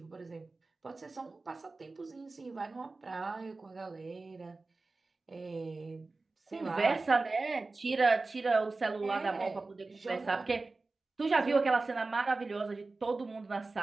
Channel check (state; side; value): quieter; left; 3.5 dB